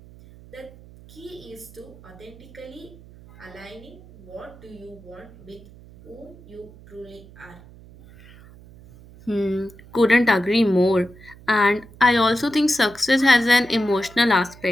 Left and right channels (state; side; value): noise; right; hum, 21 dB below the sound